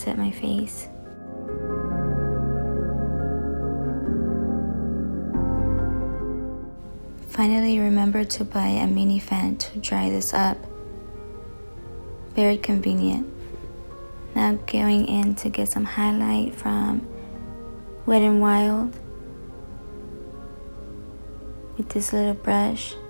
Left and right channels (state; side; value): inverted; both; correlation -1.00